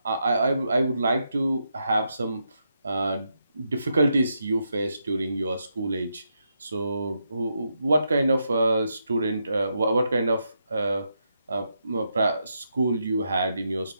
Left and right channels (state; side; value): inverted; both; correlation -0.82